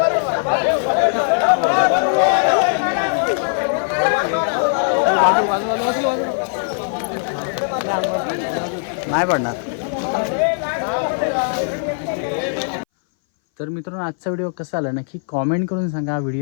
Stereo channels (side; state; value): right; silent; 62 dB below the other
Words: नाही पडणार. तर मित्रांनो आजचा व्हिडिओ कसा आला नक्की कॉमेंट करून सांगा.